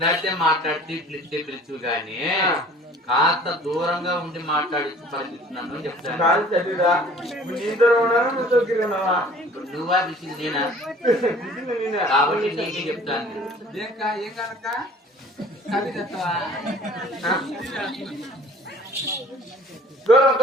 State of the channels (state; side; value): normal; both; correlation 0.50